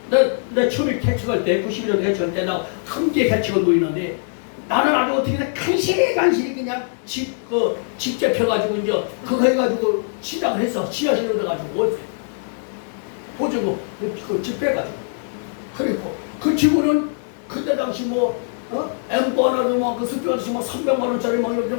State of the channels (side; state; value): right; silent; digital silence